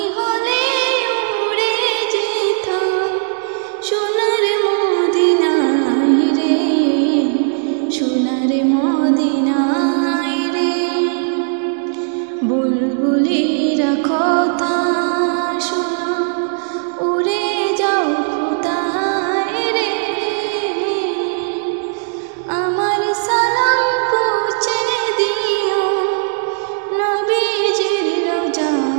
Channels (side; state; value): left; silent; digital silence